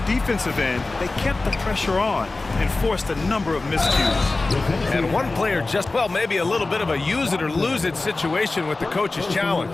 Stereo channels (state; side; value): quieter; right; 3.3 dB